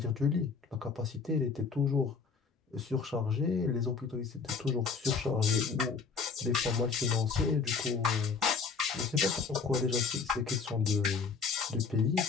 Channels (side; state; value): right; quieter; 5.3 dB